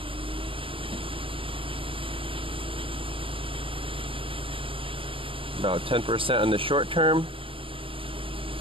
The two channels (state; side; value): late; left; 0.26 ms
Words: About 10% on the short term.